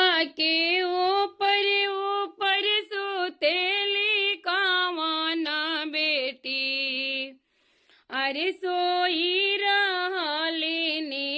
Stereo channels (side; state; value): both; identical; correlation 1.00